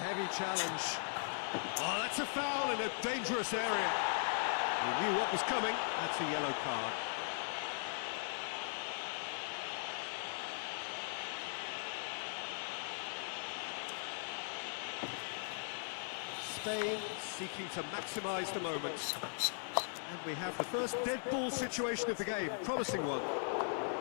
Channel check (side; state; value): right; silent; digital silence